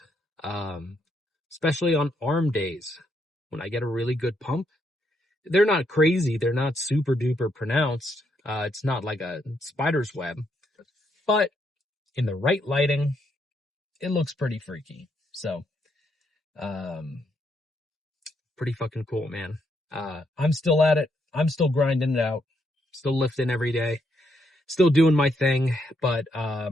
especially on arm days when I get a really good pump. They're not crazy. They're not super duper pronounced. It's not like a spider's web, but in the right lighting, it looks pretty freaky. So, pretty fucking cool, man. I'm still at it. I'm still grinding it out. Still lifting every day. Still doing my thing. But,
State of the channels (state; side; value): normal; both; correlation 0.76